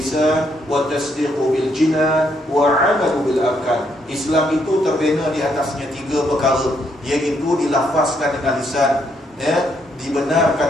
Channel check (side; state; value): both; normal; correlation 0.74